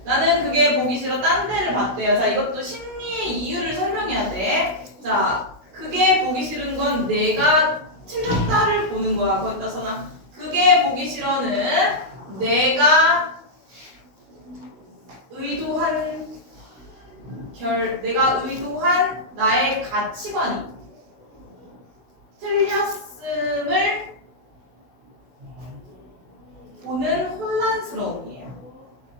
나는 그게 보기 싫어. 딴 데를 봤대요. 자, 이것도 심리의 이유를 설명해야 돼. 자, 그게 보기 싫은 건 내가 틀렸다를 보는 거야. 거기다 써놔. 그게 보기 싫어는 내가 의도한 내가 의도한 나의 가치관이 틀렸음을 보는 혼란스러움이에요.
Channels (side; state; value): left; late; 16 ms